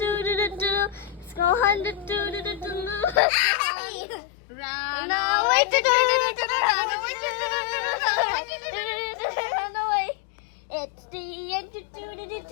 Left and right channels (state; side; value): drops out; right; at 3.2 s